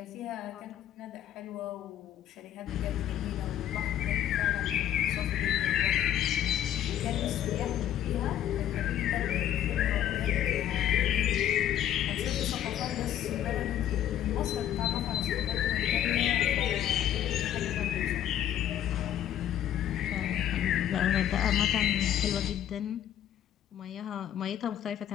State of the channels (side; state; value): right; quieter; 11.1 dB